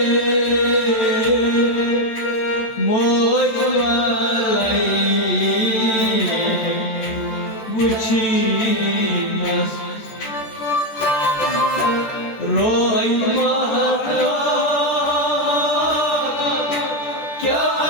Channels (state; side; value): late; right; 14 ms